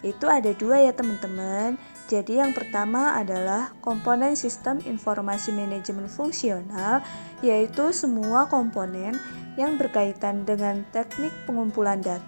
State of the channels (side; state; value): both; inverted; correlation -1.00